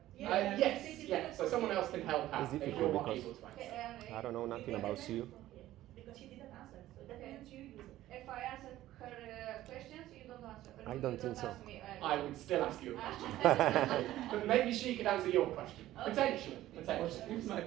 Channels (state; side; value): quieter; left; 14.6 dB